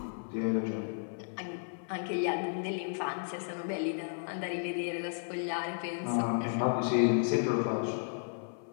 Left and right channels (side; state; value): right; silent; 55 dB below the other